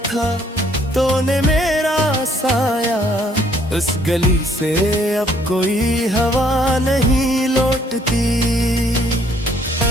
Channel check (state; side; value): normal; both; correlation 0.64